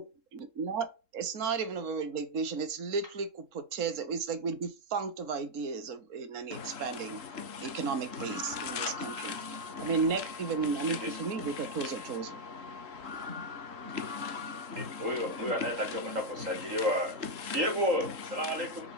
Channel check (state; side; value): late; left; 3.7 ms